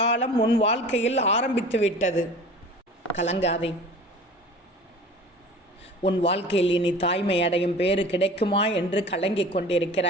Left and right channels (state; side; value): normal; both; correlation 0.41